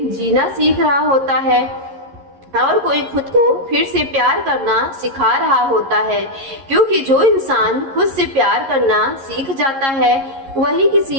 जीना सीख रहा होता है और कोई खुद को फिर से प्यार करना सिखा रहा होता है। क्योंकि जो इंसान खुद से प्यार करना सीख जाता है वही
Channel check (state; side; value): late; left; 11 ms